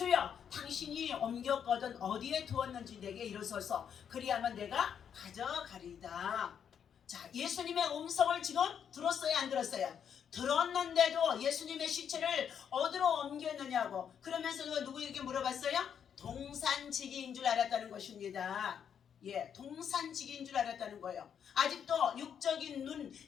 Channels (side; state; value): right; quieter; 8.1 dB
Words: 당신이 옮겼거든 어디에 두었는지 내게 이르소서 그리하면 내가 가져가리이다. 자, 예수님의 음성을 지금 들었어요 안 들었어요? 들었는데도 예수님의 시체를 어디로 옮겼느냐고 그러면서 누구에게 물어봤어요? 동산지기인 줄 알았다는 것입니다. 예, 동산지기인 줄 알았다는 거예요. 아직도 육적인 눈,